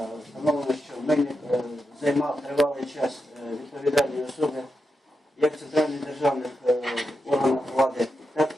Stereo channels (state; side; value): normal; both; correlation 0.87